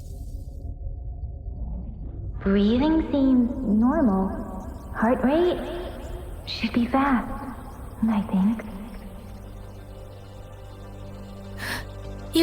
Breathing seems normal. Heart rate should be fast, I think.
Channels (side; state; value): both; identical; correlation 1.00